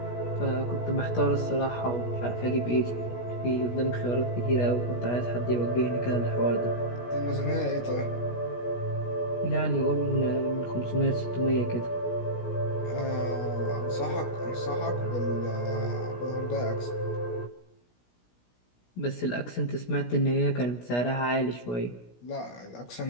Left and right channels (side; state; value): right; late; 17 ms